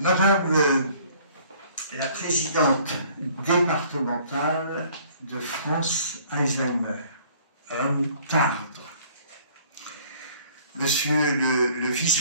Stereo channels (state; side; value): inverted; both; correlation -0.56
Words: la présidente départementale de France Alzheimer, Madame Tardre, Monsieur le